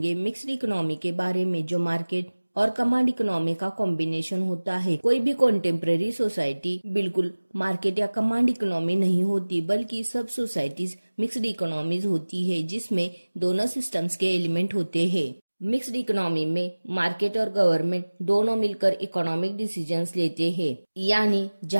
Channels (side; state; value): both; inverted; correlation -1.00